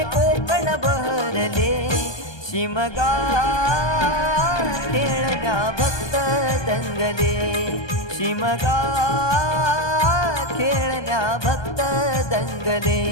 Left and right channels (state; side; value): late; right; 1.2 ms